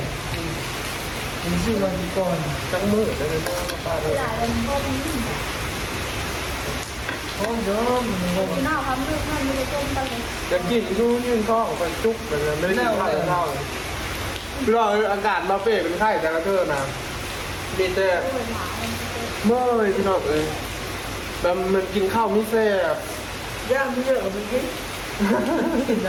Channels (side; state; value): both; identical; correlation 1.00